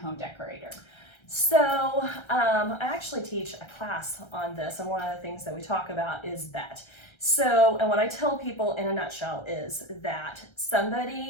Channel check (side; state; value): right; late; 1.3 ms